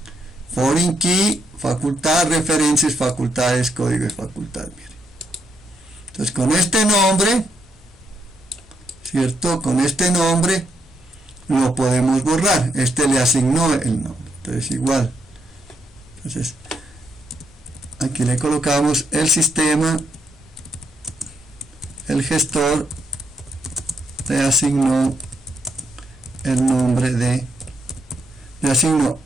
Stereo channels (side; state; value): both; normal; correlation 0.77